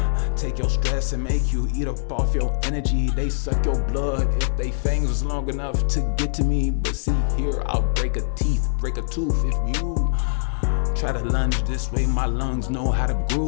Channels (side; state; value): right; silent; 63 dB below the other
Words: Take your stress and make you eat up off your energy. They suck your blood if they fangs was long enough to get to me. But see here, I'll break a tooth if you try to lunge this way. My lungs know how to